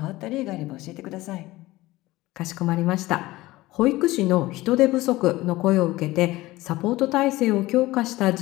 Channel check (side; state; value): right; quieter; 18.5 dB